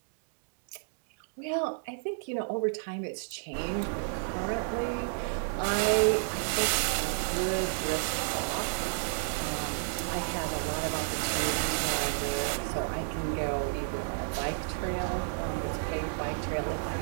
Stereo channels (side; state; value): left; silent; digital silence